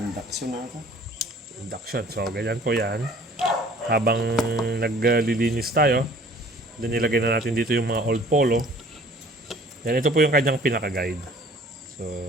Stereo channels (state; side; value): normal; both; correlation 0.52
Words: na ito. Induction. So ganyan po 'yan. Habang naglilinis tayo, then nilagay na natin dito yung mga old polo. Then ito po yung kanyang pinaka-guide. So